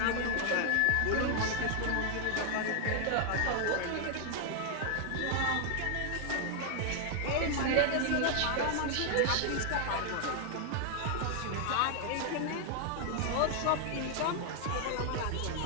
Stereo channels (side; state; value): both; different; correlation 0.00